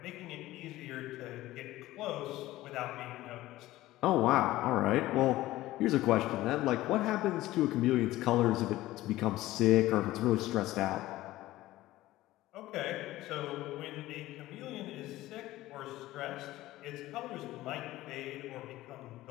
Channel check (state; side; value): quieter; right; 16.5 dB